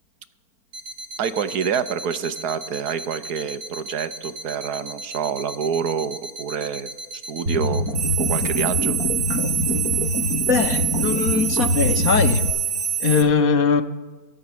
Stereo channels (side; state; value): left; late; 4.4 ms